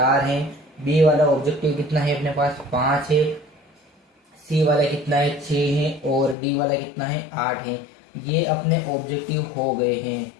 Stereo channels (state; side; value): drops out; right; at 6.4 s